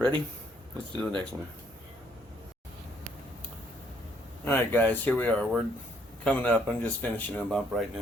Let's do the next one. Alright guys, here we are. We're coming up. I'm just finishing them up right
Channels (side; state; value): both; normal; correlation 0.67